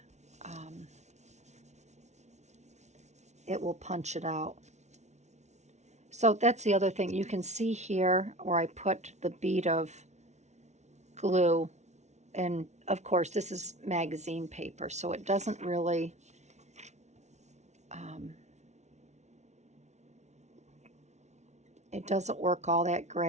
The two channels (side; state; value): left; late; 0.32 ms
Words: it will punch it out. So that's the other thing. You can see here where I put the bead of glue. And of course, this is magazine paper, so it doesn't really It doesn't work all that